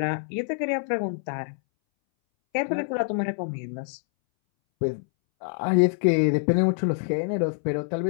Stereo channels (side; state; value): right; silent; 61 dB below the other